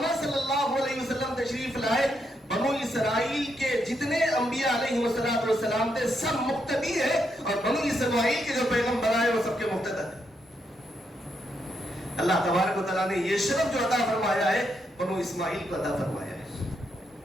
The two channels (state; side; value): normal; both; correlation 0.79